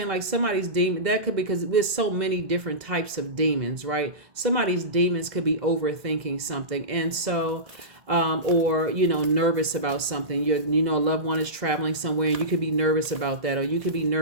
Like somebody's demon, that could be, because there's so many different types of demons, right? Somebody's demons could be overthinking something. And so, or, nervous about something. A loved one is traveling somewhere and you could be nervous about that. Or you could be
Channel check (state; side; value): late; left; 2.0 ms